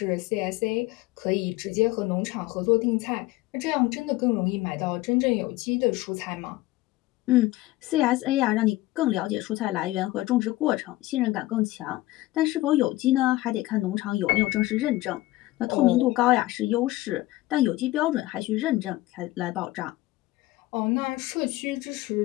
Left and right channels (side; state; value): right; quieter; 18.0 dB